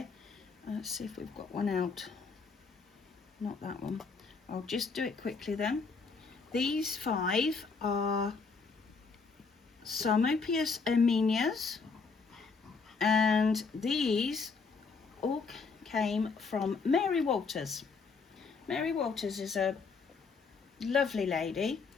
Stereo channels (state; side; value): quieter; right; 4.7 dB